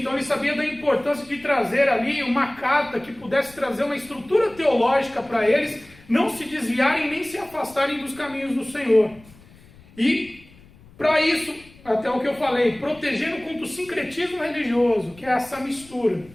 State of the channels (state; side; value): noise; left; rumble, 24 dB below the sound